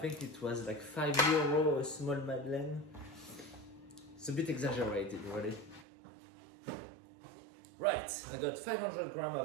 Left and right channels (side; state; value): left; drops out; at 5.9 s